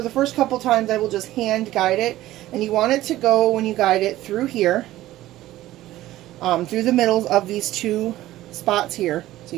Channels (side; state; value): left; quieter; 15.3 dB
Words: the first couple times I will just hand guide it, and you want it to go, when you guide it, through here, through the middles of these two spots here. So